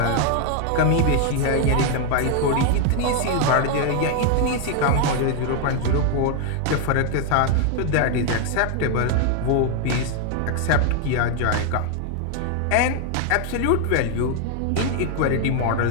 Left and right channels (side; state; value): both; different; correlation 0.00